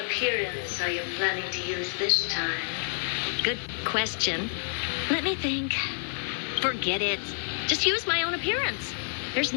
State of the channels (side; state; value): right; silent; 59 dB below the other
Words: are you planning to use this time? Good question. Let me think. Forget it. Just use my own appearance. There's